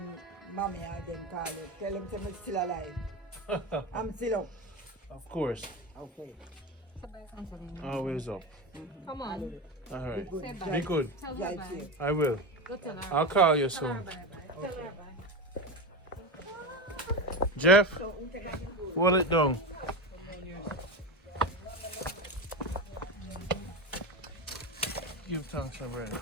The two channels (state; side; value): normal; both; correlation 0.19